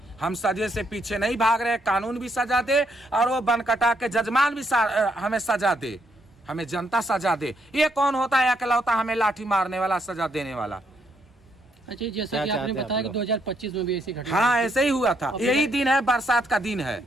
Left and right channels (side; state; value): both; normal; correlation 0.74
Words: हम सजे से पीछे नहीं भाग रहे, कानून भी सजा दे और वो बनकटा के जजमान भी हमें सजा दे, हमें जनता सजा दे। ये कौन होता है अकेलौता हमें लाठी मारने वाला, सजा देने वाला? अच्छा, जैसा कि आपने बताया कि 2025 में भी ऐसी घटना, हाँ ऐसे ही हुआ था। यही दिन है, बरसात का दिन है,